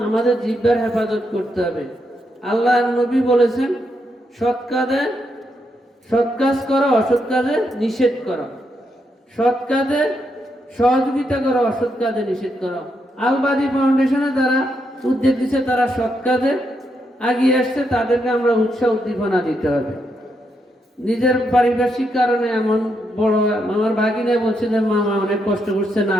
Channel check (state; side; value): normal; both; correlation 0.80